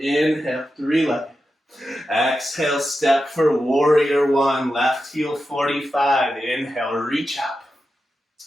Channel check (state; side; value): normal; both; correlation 0.90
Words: Inhale, 3-legged. Exhale, step for warrior 1, left heel 45. Inhale, reach up.